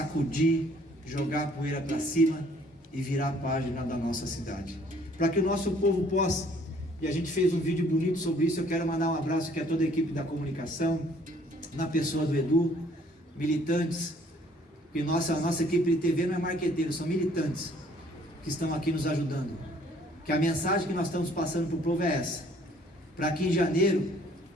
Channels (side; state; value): both; normal; correlation 0.60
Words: jogar a poeira para cima e virar a página da nossa cidade. Para que o nosso povo possa, e a gente fez um vídeo bonito sobre isso, eu quero mandar um abraço aqui a toda a equipe da comunicação, na pessoa do Edu, militantes, porque nossa equipe de TV não é marqueteiro, são militantes que estão aqui nos ajudando. Que a mensagem que nós estamos passando para o povo é essa: para que em janeiro